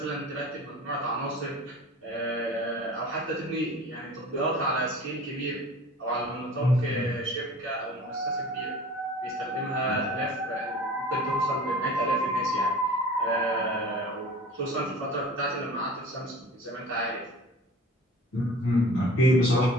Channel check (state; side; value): normal; both; correlation 0.42